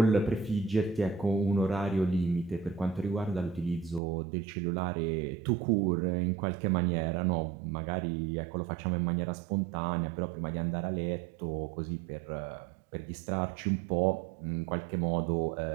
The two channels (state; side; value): drops out; left; at 4.0 s